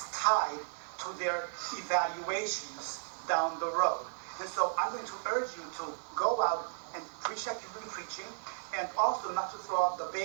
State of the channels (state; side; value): silent; left; digital silence